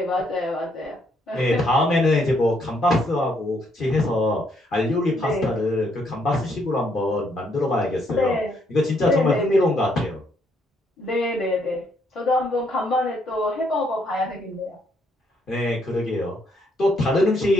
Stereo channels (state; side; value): normal; both; correlation 0.72